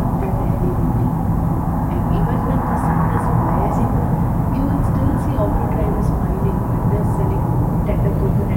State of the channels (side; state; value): both; identical; correlation 1.00